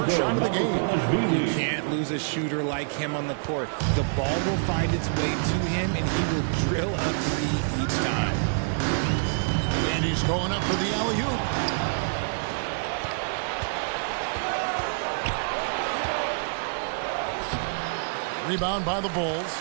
shot of the game. You can't lose a shooter like him on the court. The ball will find its way to him, and he will drill a 3 each time. And he's going up for the alley-oop. Rebound by the Bulls.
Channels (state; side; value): silent; left; digital silence